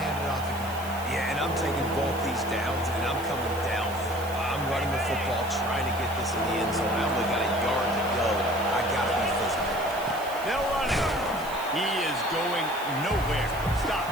it off again? Yeah, and I'm taking both these downs, and I'm coming downhill. I'm running the football, trying to get this in the end zone. I only got a yard to go. I got to be physical. They'll run it. He is going nowhere. Stop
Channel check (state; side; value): noise; right; hiss, 16 dB below the sound